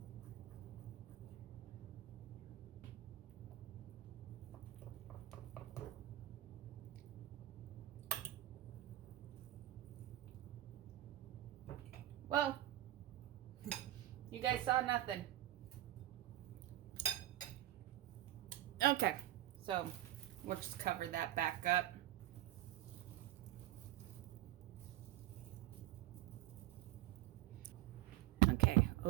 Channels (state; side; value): quieter; left; 14.6 dB